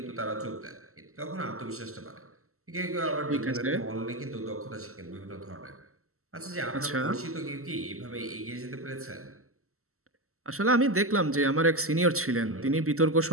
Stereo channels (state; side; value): late; left; 0.63 ms